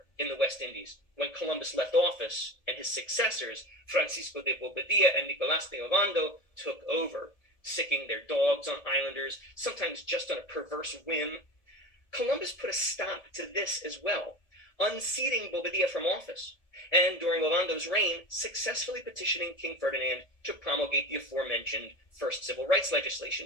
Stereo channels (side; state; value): right; late; 1.7 ms